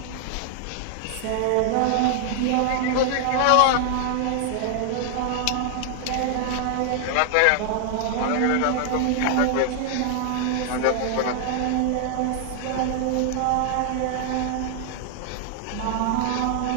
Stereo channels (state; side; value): different; both; correlation 0.00